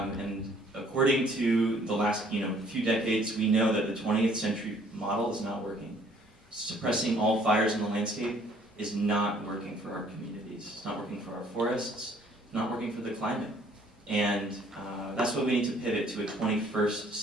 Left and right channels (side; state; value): both; normal; correlation 0.60